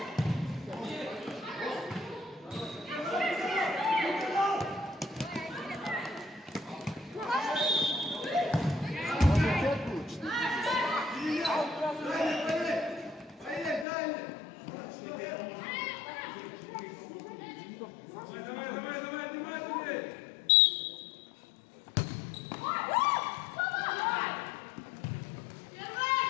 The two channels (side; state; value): right; drops out; at 13.9 s